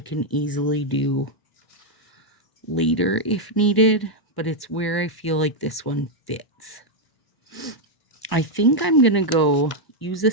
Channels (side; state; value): right; late; 1.0 ms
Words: easily do later if needed, but it's where I feel like this one fits. I think I'm going to go use a